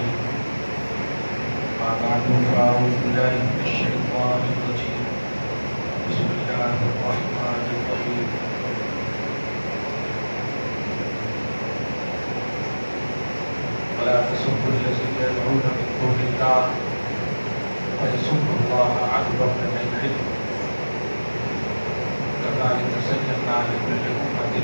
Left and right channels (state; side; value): inverted; both; correlation -1.00